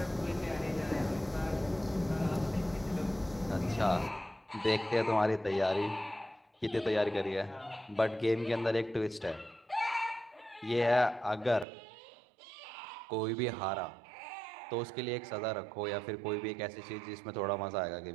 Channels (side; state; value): left; drops out; at 11.7 s